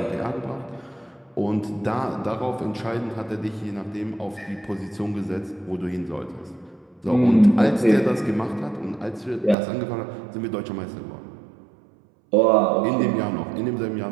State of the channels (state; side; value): drops out; left; at 9.6 s